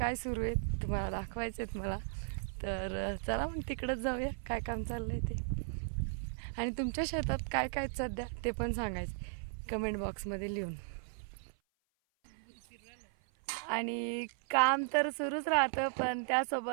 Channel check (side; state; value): left; silent; 54 dB below the other